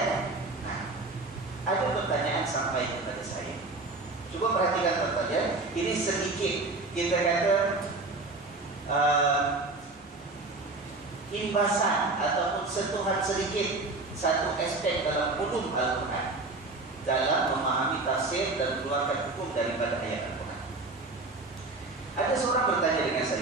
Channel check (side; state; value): left; quieter; 3.3 dB